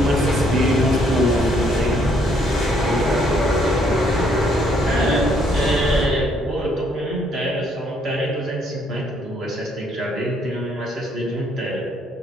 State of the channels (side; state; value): both; normal; correlation 0.68